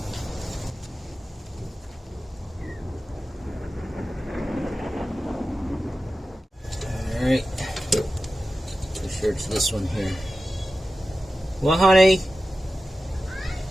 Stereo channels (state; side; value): normal; both; correlation 0.94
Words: Alright. Pretty sure it's this one here. Well, honey?